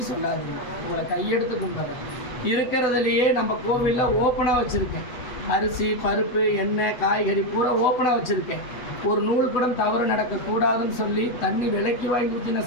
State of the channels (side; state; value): right; late; 8.0 ms